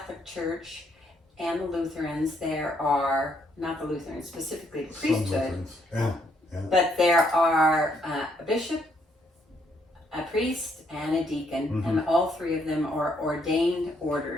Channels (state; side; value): normal; both; correlation 0.72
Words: Church and the Lutherans, there are, not the Lutherans, specifically the Some priesthood, Lutherans. Yeah. but there are a bishop, a priest, and a deacon, and all three of them are ordained